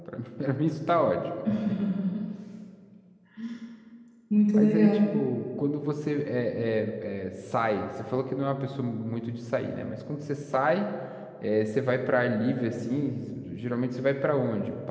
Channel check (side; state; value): both; identical; correlation 1.00